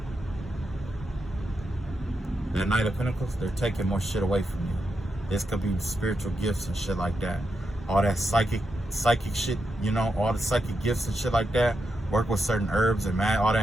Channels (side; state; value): both; normal; correlation 0.85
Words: That Knight of Pentacles, they're taking more shit away from you. This could be spiritual gifts and shit like that. All that psychic shit, you know, all the psychic gifts and shit like that. Work with certain herbs and all